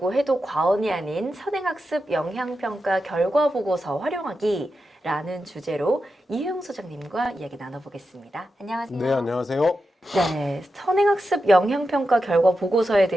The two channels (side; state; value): both; normal; correlation 0.89